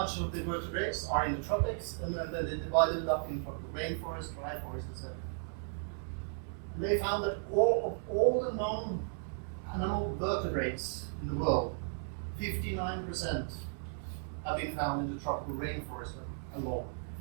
of the vertebrates are in the tropics, and then they divided it up in tropical rainforest, dry forest, etc. And they found that all the known animal vertebrates in the world, 59% have been found in the tropical rainforest alone.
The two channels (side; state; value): left; silent; 54 dB below the other